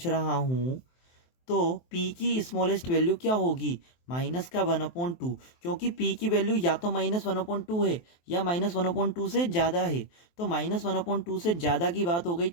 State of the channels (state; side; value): late; right; 23 ms